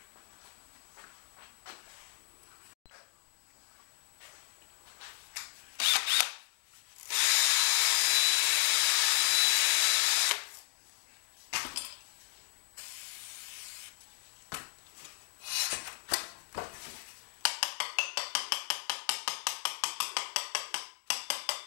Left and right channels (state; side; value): silent; right; digital silence